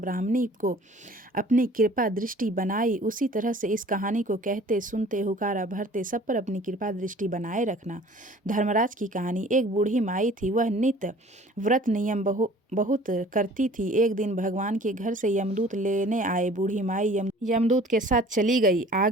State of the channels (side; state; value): both; normal; correlation 0.49